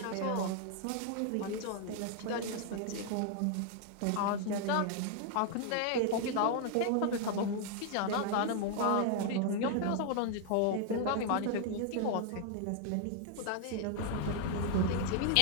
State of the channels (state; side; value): different; both; correlation 0.00